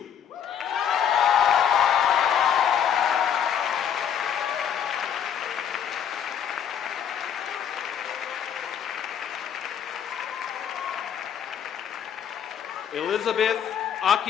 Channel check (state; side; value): quieter; right; 8.6 dB